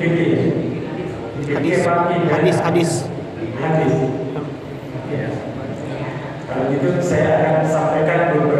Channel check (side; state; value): both; identical; correlation 1.00